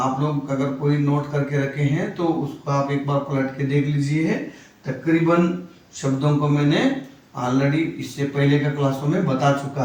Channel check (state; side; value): identical; both; correlation 1.00